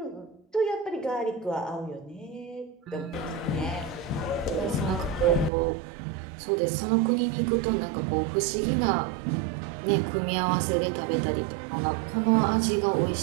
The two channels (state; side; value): drops out; left; at 5.5 s